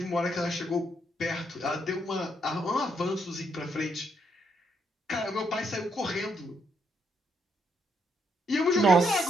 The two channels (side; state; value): both; normal; correlation 0.75